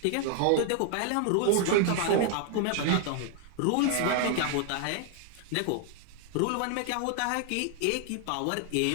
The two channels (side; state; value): both; different; correlation 0.00